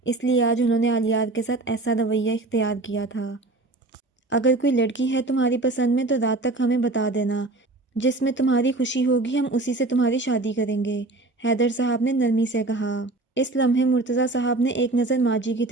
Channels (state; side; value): quieter; left; 3.1 dB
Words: اس لیے آج انہوں نے آلیار کے ساتھ ایسا رویہ اختیار کیا تھا۔ اگر کوئی لڑکی ہے تمہاری پسند میں تو رات تک ہمیں بتا دینا، جس میں تمہاری خوشی ہوگی ہم اسی سے تمہاری شادی کریں گے، حیدر صاحب نے نرمی سے کہا۔ اس لمحے مرتضیٰ صاحب نے ایک نظر ماجی کی